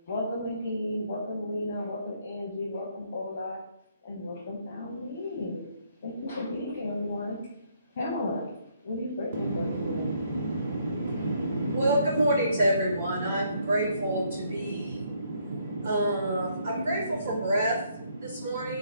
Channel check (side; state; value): both; inverted; correlation -0.70